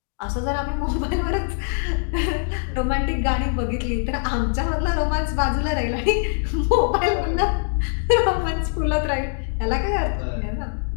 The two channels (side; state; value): right; silent; digital silence